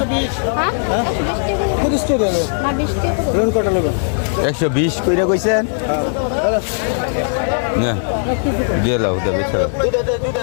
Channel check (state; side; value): silent; right; digital silence